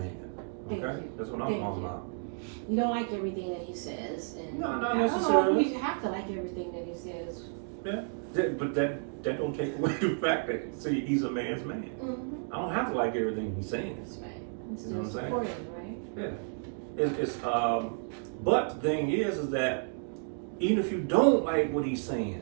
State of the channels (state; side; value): silent; left; 57 dB below the other